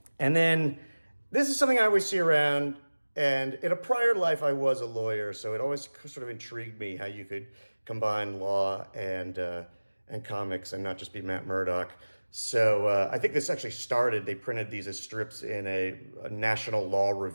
And then this is something I always see around, and in a prior life I was a lawyer, so it always sort of intrigued me how you could combine law and comics and not just be Matt Murdock. So I think this actually started, they printed these as strips in a National Law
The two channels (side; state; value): both; inverted; correlation -1.00